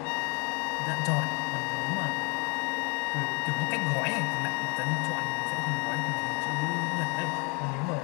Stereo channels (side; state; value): right; quieter; 31.3 dB